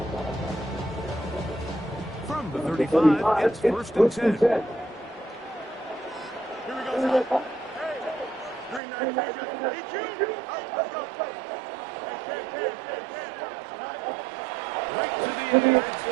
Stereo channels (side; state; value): left; drops out; at 8.8 s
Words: From the 35, it's 1st and 10. Here we go, son. Green 9, let's go. Right to the air, it's